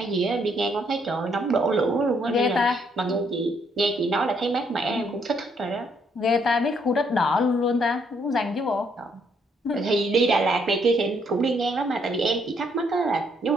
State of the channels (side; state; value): both; normal; correlation 0.71